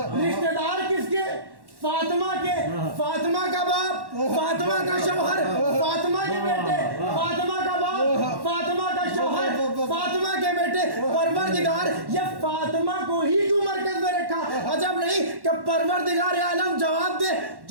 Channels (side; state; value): left; late; 1.1 ms